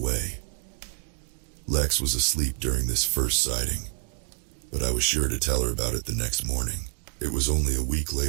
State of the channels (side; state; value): left; silent; 60 dB below the other